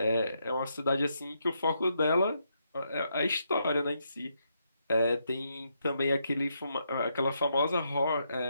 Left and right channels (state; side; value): inverted; both; correlation -0.79